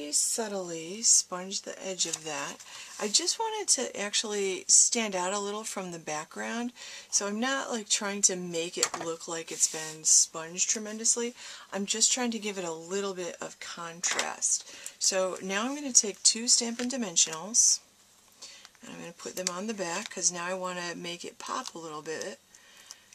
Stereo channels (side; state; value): both; identical; correlation 1.00